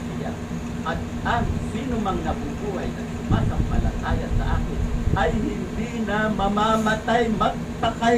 siya. At ang sino mang nabubuhay at sumasampalataya sa akin, ay hindi na mamamatay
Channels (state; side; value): identical; both; correlation 1.00